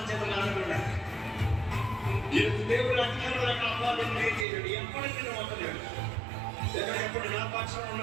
చేతులు ఆడకుండా దేవుడు అధికారుల కాపాలని చేయడు. ఎప్పటికీ వదలేడు. ఎప్పుడు నా పక్షం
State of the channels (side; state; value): left; drops out; at 4.5 s